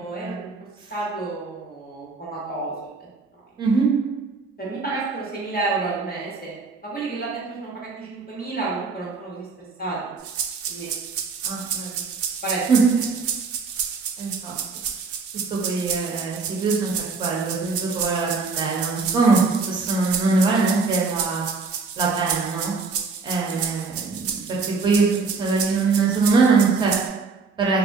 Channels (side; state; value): left; quieter; 4.3 dB